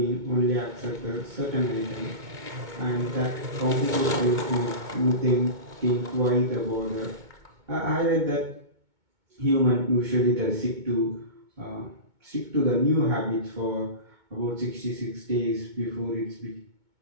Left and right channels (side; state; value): left; late; 2.2 ms